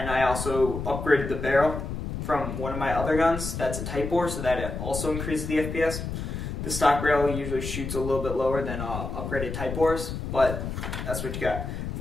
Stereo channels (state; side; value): noise; left; rumble, 5 dB below the sound